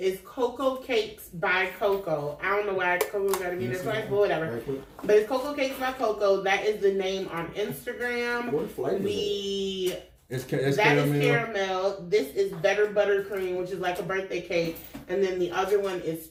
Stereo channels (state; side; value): identical; both; correlation 1.00